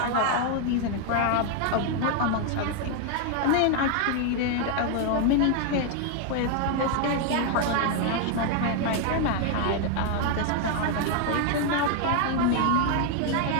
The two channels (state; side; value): different; both; correlation 0.00